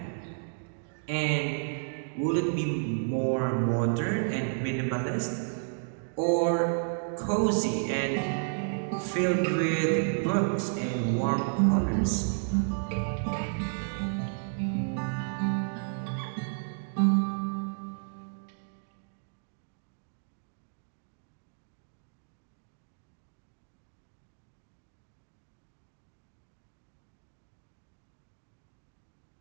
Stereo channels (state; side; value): silent; left; digital silence